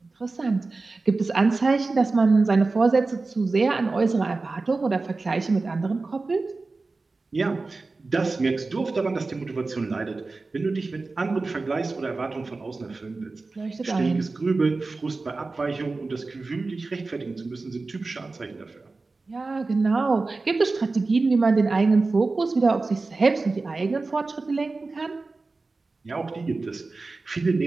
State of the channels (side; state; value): left; quieter; 3.7 dB